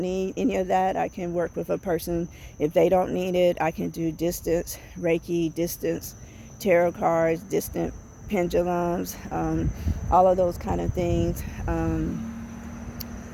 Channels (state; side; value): identical; both; correlation 1.00